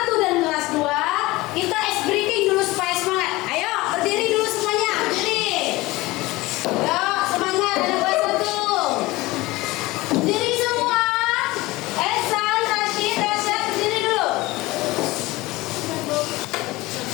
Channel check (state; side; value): quieter; right; 20.4 dB